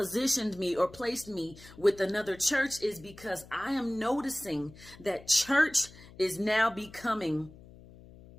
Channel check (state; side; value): noise; left; hum, 20 dB below the sound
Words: me or placed me with another church is because I am noticing that church is now becoming